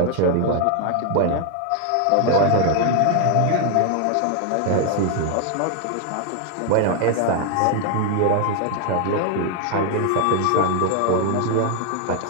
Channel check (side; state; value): both; different; correlation 0.00